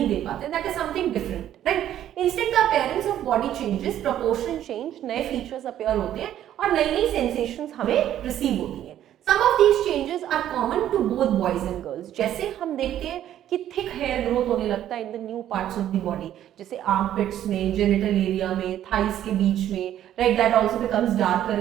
दे पाते. That is something different, right? Instead, the appearance of body changes, proportion change, नए features appear होते हैं और नई नई sensations हमें receive होती हैं. Some of these changes are common to both boys and girls. जैसे हम देखते हैं कि thick hair growth होने लगता है in the new parts of the body, जैसे armpits में, genital area में, thighs के बीच में, right? That also becomes darker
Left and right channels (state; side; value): quieter; left; 11.5 dB